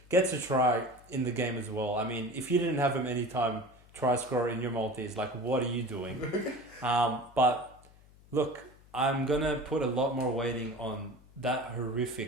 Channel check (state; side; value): noise; left; hum, 25 dB below the sound